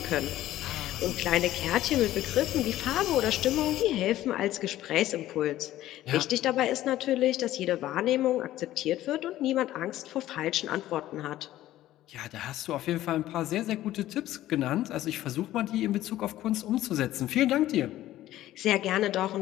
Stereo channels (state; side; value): quieter; right; 14.3 dB